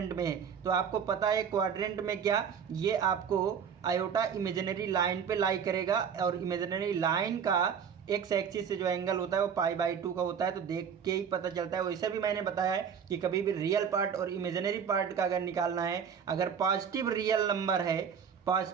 में है। तो आपको पता है क्वाड्रेंट में क्या, ये आपको आयोटा इमेजिनरी लाइन पे लाई करेगा, और इमेजिनरी लाइन का एक्स एक्सिस से जो एंगल होता है वो π/2 का होता है। तो देख के ही पता चलता है। वैसे भी मैंने बताया है कि कभी भी रियल पार्ट और इमेजिनरी पार्ट का अगर निकालना है, अगर पॉजिटिव रियल नंबर है,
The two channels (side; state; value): left; quieter; 7.3 dB